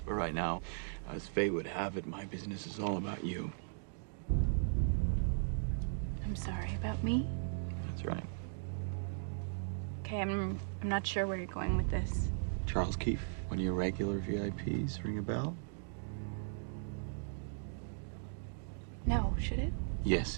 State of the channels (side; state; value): left; silent; digital silence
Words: But right now, as fate would have it, my business is all about you. I'm sorry about me? That's right. Okay, I'm not sure where you're going with this. Charles Keefe, one of your regular VIPs, ring a bell? No, should it?